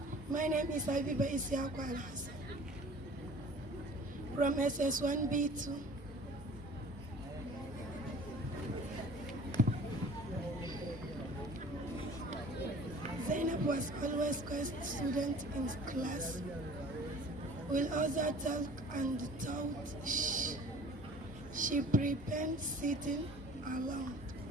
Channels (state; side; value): normal; both; correlation 0.46